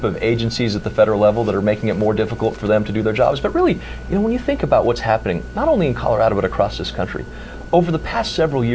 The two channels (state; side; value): identical; both; correlation 1.00